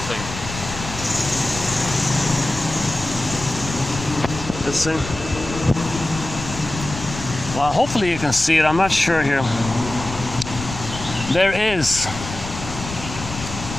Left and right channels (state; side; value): noise; left; rumble, 10 dB below the sound